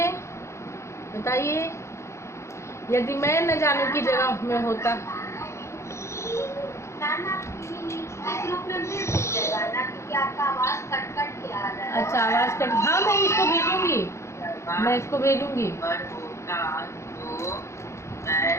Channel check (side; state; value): right; late; 0.14 ms